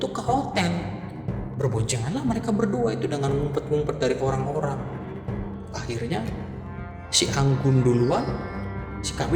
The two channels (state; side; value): identical; both; correlation 1.00